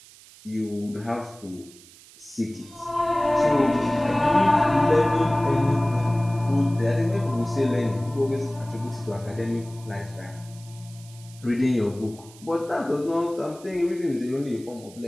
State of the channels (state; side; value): noise; right; hiss, 22 dB below the sound